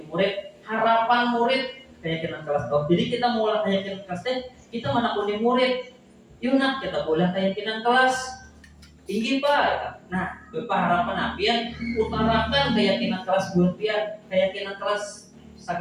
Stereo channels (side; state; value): both; identical; correlation 1.00